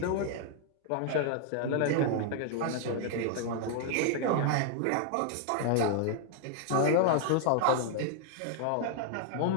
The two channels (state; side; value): different; both; correlation -0.01